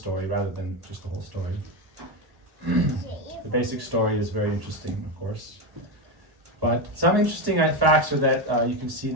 rather than just the whole story. The basic story is very interesting, of course. But some interesting facts are that you can see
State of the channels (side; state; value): left; late; 1.1 ms